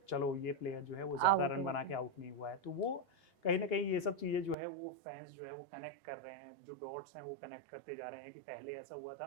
चलो ये प्लेयर जो है वो ज़्यादा आउट रन हो बना के गए। आउट नहीं हुआ है। तो वो कहीं न कहीं ये सब चीज़ें जो है वो फैंस जो है वो कनेक्ट कर रहे हैं, जो डॉट्स हैं वो कनेक्ट करते जा रहे हैं कि पहले ऐसा हुआ था,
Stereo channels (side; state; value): left; drops out; at 4.5 s